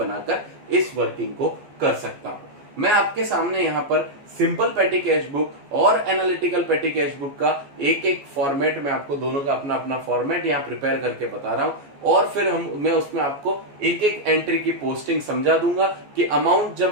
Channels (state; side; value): late; left; 14 ms